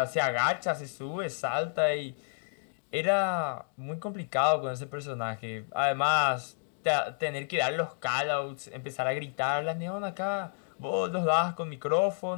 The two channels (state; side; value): silent; right; digital silence